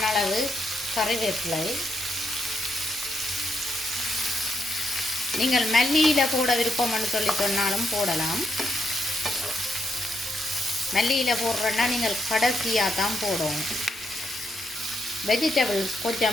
அளவு கறிவேப்பிலை. நீங்கள் மல்லியில் போட விருப்பம்னு சொல்லி சொன்னாலும் போடலாம். மல்லியில் போடுறேன்னா நீங்கள் கடைசியாக தான் போடணும். வெஜிடபிள்ஸ்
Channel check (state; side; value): normal; both; correlation 0.80